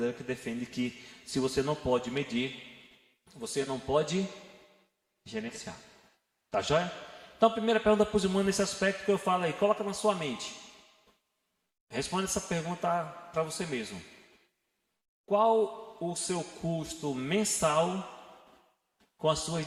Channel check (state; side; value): identical; both; correlation 1.00